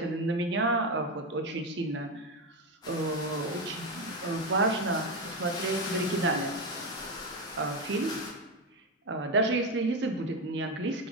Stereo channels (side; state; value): both; normal; correlation 0.13